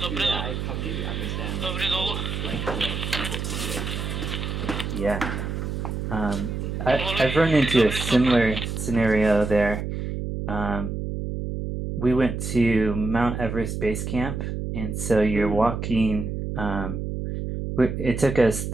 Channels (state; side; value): noise; right; hum, 4 dB below the sound